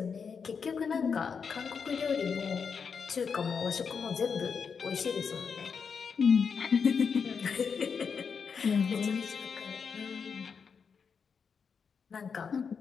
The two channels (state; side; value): quieter; right; 6.0 dB